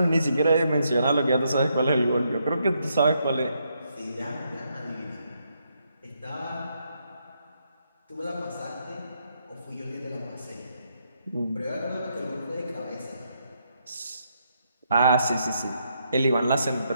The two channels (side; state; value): both; inverted; correlation -0.77